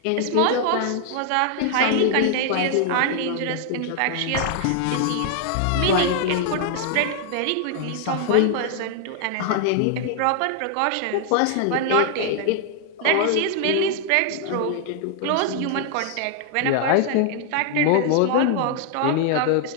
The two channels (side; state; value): both; different; correlation 0.00